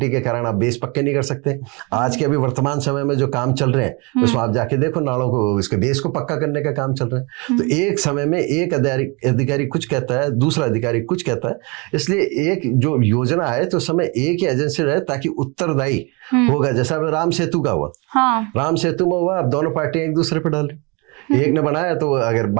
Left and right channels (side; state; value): left; quieter; 29.7 dB